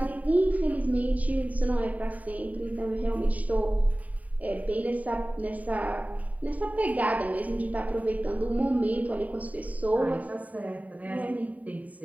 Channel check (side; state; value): left; late; 0.071 ms